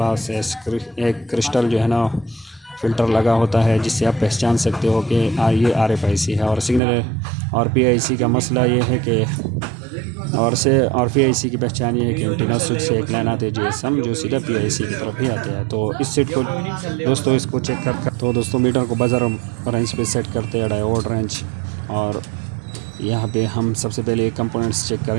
एक क्रिस्टल जो है ना फ़िल्टर लगा होता है, जिससे आप पहचान सकते हो कि ये RFIC है। और सिग्नल और PIC का मसला ये है कि और PIC की पहचान ये है कि एंटीना स्विच से एक लाइन आती है GSM, जो सीधा PIC की तरफ ही आते हैं। तो इस सेट को दोस्तों इसको चेक कर तो दोस्तों मीटर को बज़र रेंज पे सेट करते हैं, डायोड रेंज। और यहाँ पे हम सबसे पहले कंपोनेंट्स चेक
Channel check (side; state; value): left; drops out; at 6.8 s